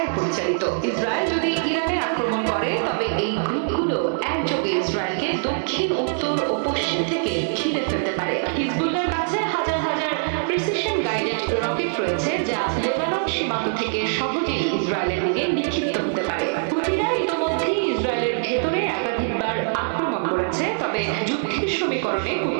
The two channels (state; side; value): silent; left; 59 dB below the other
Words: পরিচালিত। ইসরায়েল যদি ইরানে আক্রমণ করে, তবে এই গ্রুপগুলো একযোগে ইসরায়েলকে দক্ষিণ, উত্তর ও পশ্চিম থেকে ঘিরে ফেলতে পারে। হিজবুল্লাহর কাছে হাজার হাজার প্রিসিশন গাইডেড রকেট রয়েছে, যা লেবানন সীমান্ত থেকে সহজেই ইসরায়েলের দিকে নিক্ষিপ্ত হতে পারে। হুথিরা ইতোমধ্যেই ইসরায়েলের ভেতরে একাধিকবার আক্রমণ করেছে, তবে যুদ্ধের সমীকরণে